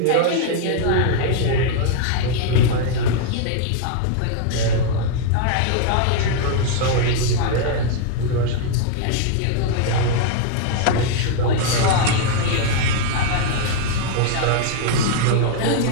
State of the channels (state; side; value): different; both; correlation 0.00